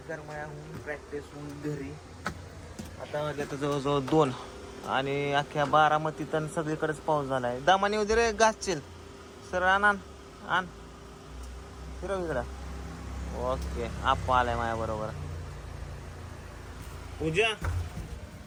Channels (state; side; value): identical; both; correlation 1.00